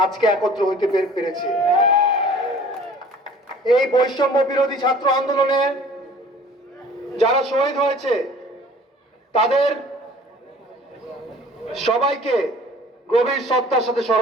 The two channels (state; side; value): normal; both; correlation 0.49